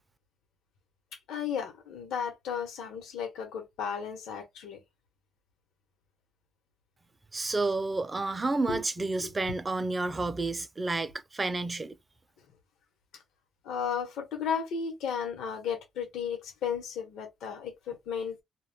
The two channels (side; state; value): both; normal; correlation 0.71